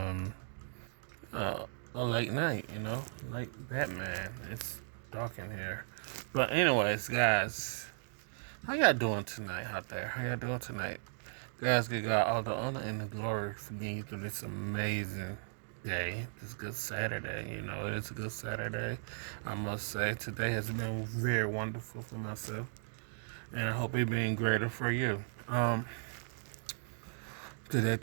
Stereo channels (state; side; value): silent; left; digital silence